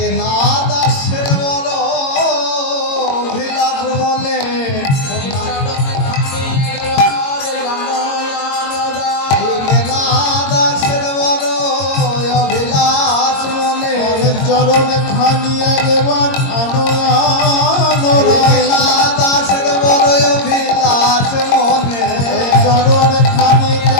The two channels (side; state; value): right; late; 22 ms